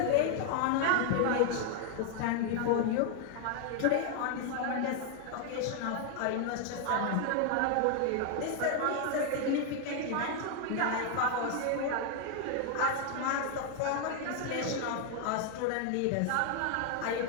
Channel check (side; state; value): both; different; correlation 0.00